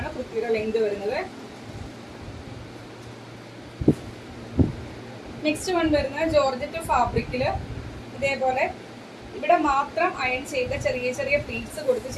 കുർത്തിയുടെ ലെങ്ത് വരുന്നത്. നെക്സ്റ്റ് വൺ വരുന്നത് ജോർജറ്റ് ഫാബ്രിക്കില് ഇതേപോലെ ഇവിടെ മാത്രം അയൺ ചെയ്ത ചെറിയ ചെറിയ പ്ലീറ്റ്സ് കൊടുത്ത്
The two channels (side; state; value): both; identical; correlation 1.00